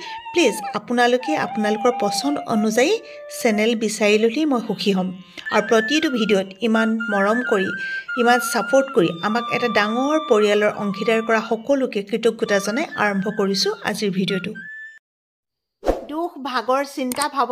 প্লিজ আপোনালোকে আপোনালোকৰ পচন্দ অনুযায়ী চেনেল বিচাৰি ল'লেই মই সুখী হ'ম। আৰু প্ৰতিটো ভিডিঅ'ত ইমান মৰম কৰি, ইমান ছাপোৰ্ট কৰি আমাক এটা ডাঙৰ পৰিয়ালৰ অংশীদাৰ কৰা সকলোকে কৃতজ্ঞতা জনাই আৰম্ভ কৰিছোঁ আজিৰ ভিডিঅ'টো। দুখ ভাগৰ চিন্তা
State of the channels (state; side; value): identical; both; correlation 1.00